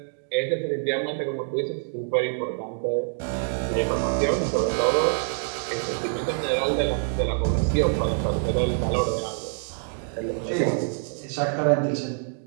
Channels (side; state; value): left; silent; digital silence